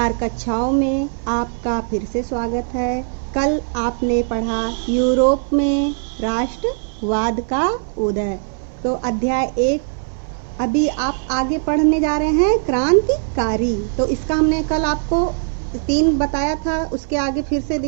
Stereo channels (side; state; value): left; silent; 62 dB below the other